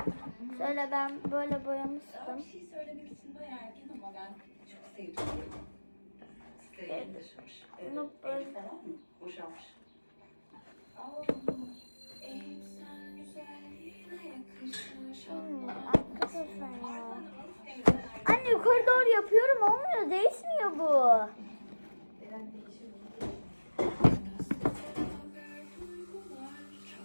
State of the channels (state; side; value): inverted; both; correlation -1.00